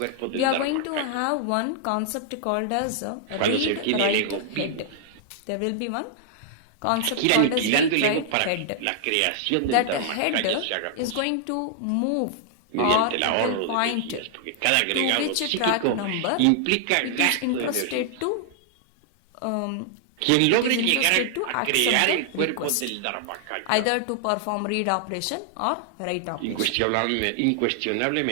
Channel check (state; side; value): different; both; correlation -0.01